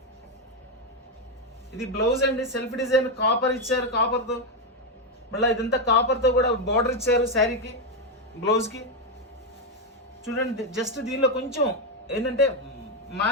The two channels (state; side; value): normal; both; correlation 0.05